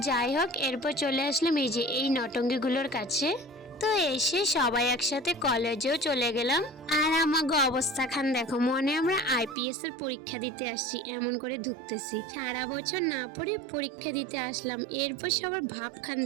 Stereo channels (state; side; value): drops out; left; at 9.6 s